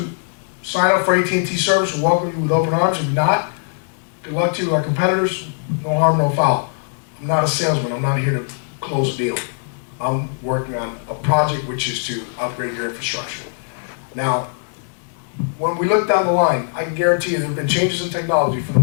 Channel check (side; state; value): right; silent; digital silence